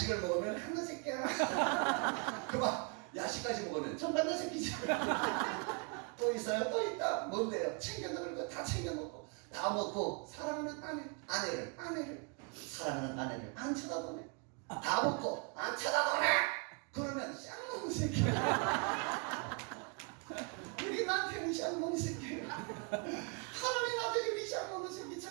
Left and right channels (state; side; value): quieter; left; 35.0 dB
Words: 먹으면 한나 새끼야. 그만 야식까지 먹으면 정반대 새끼지. 또 있어요? 또 있다. 뭔데요? 챙겨 먹을 거 다 챙겨 먹고 다 먹고 사랑하는 아내를 사랑하는 아내를 안 쳐다보네. 다 먹고 안 쳐다보네. 그러면 쌍놈 새끼. 우리 남편이 쌍놈 새끼. 하나님 아버지 우리 쌍놈 새끼